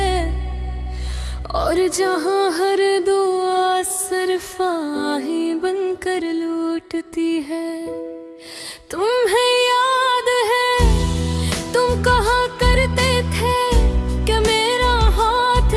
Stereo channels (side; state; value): both; identical; correlation 1.00